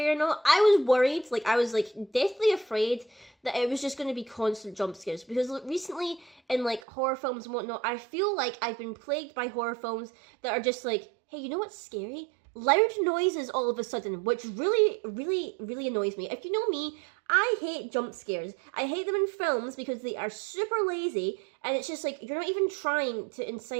or not. I was worried, I was deathly afraid that it was just going to be constant jump scares, because recently in like horror films and whatnot, I feel like I've been plagued by horror films that are just like, hey, you know what's scary? Loud noises all of a sudden, which really, really, really annoys me. If you know me, I hate jump scares. I hate them in films because they are super lazy, and it's just like, you're not even trying to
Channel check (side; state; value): left; drops out; at 6.8 s